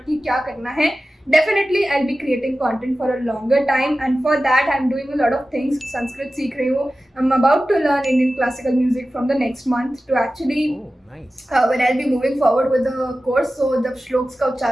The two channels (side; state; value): both; normal; correlation 0.95